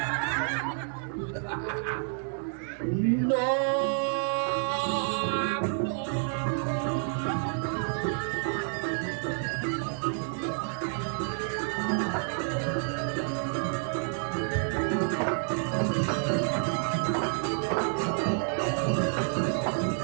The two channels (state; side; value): silent; left; 57 dB below the other